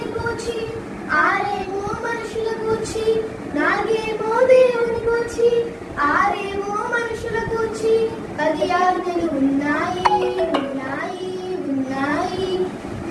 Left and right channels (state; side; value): identical; both; correlation 1.00